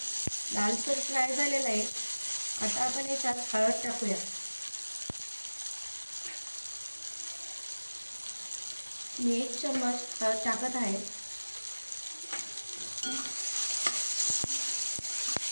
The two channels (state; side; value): inverted; both; correlation -1.00